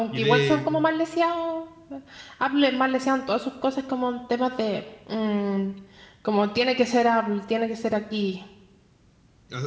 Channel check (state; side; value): identical; both; correlation 1.00